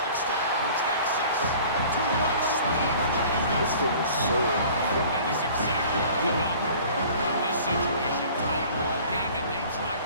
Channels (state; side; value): inverted; both; correlation -0.47